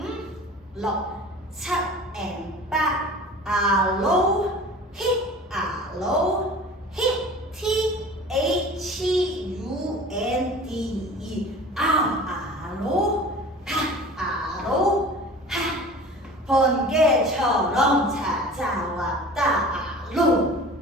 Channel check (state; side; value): normal; both; correlation 0.41